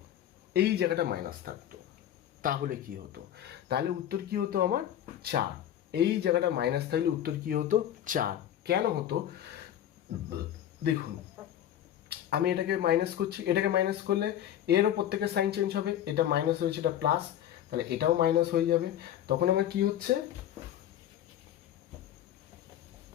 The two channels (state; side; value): quieter; right; 11.1 dB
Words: এই জায়গাটা মাইনাস থাকতো, তাহলে কি হতো, তাহলে উত্তর কি হতো আমার 4। এই জায়গাটা মাইনাস থাকলে উত্তর কি হতো 4। কেন হতো দেখুন, আমি এটাকে মাইনাস করছি, এটাকে মাইনাস করলে এরও প্রত্যেকের সাইন চেঞ্জ হবে, এটা মাইনাস হয়েছে এটা প্লাস, তাহলে এটাও মাইনাস হয়ে যাবে। তখন আমার কি হচ্ছে,